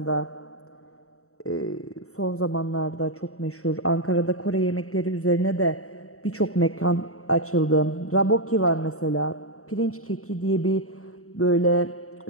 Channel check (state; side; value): late; right; 0.64 ms